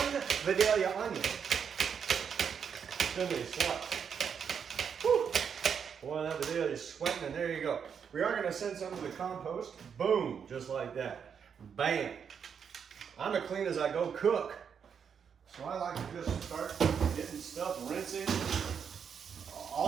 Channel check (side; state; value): left; quieter; 7.1 dB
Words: Vidalia onion. Thinly sliced. Whew. Boy, that Vidalia is sweating, and there you go. We are going to send some to the compost. Boom, just like that. Bam. I'm as clean as I go cook. So I like to just start getting stuff rinsing